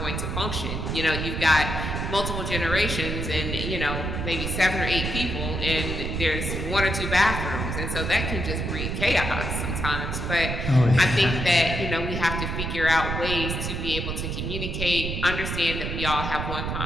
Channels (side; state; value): right; noise; rumble, 3 dB below the sound